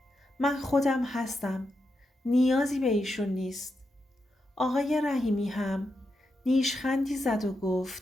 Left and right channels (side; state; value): both; normal; correlation 0.86